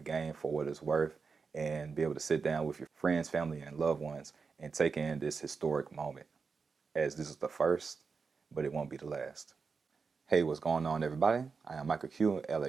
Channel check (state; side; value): quieter; left; 5.0 dB